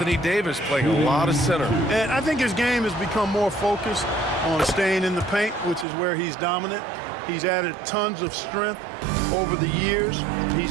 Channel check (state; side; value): drops out; left; at 5.9 s